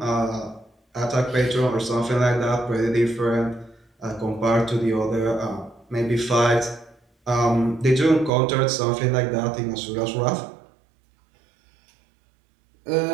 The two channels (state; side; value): drops out; left; at 8.3 s